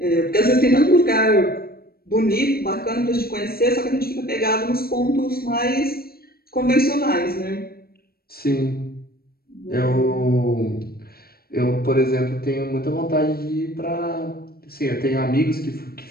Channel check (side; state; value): right; late; 0.44 ms